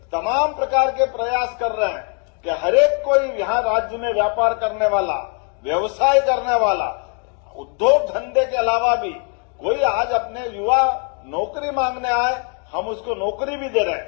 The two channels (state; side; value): quieter; right; 39.7 dB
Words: तमाम प्रकार के प्रयास कर रहे हैं कि हर एक कोई यहां राज्य में व्यापार करने वाला, व्यवसाय करने वाला, उद्योग धंधे के अलावा भी कोई आज अपने युवा नौकरी मांगने आए, हम उसको नौकरी भी दे रहे